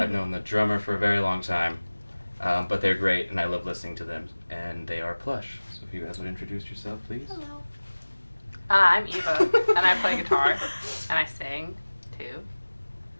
known the drummer for a very long time, but they're great and I love listening to them, and they are Plush. So if you guys would introduce yourself, please. Hello. I'm Eva, and I play guitar, and I sing, too.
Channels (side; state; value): both; inverted; correlation -1.00